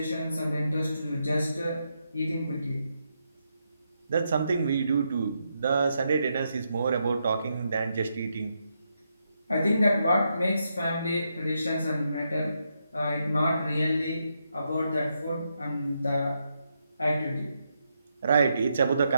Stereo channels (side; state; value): both; inverted; correlation -0.82